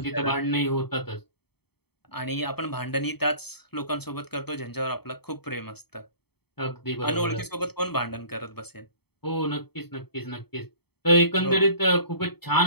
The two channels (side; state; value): right; late; 0.97 ms